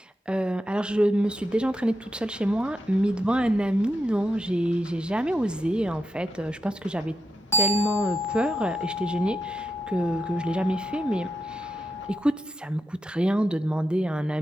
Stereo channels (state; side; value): normal; both; correlation 0.84